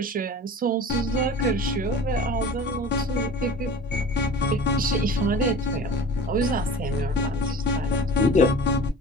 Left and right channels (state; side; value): normal; both; correlation 0.39